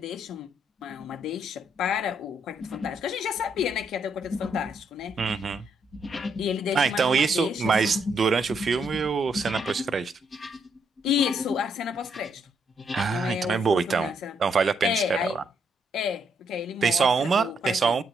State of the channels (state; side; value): normal; both; correlation 0.75